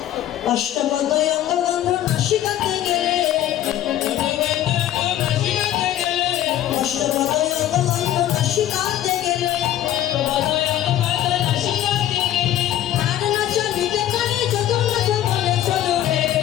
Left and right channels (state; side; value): quieter; right; 12.3 dB